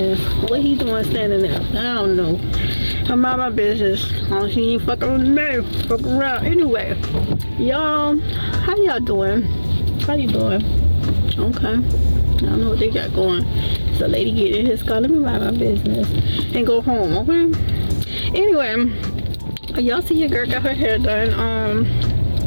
What he doing standing there? I don't know. I'm out my business. She ain't fucking with me. Fuck around. Anyway, y'all, how y'all doing? How you doing? Okay. I don't know what they got going. It's a lady getting in his car. Let me mind my business and go home, okay? Anyway, y'all see your girl got her hair done.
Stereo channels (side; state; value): both; inverted; correlation -1.00